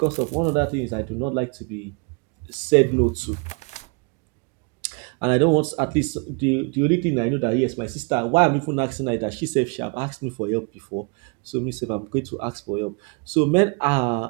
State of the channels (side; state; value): left; quieter; 34.3 dB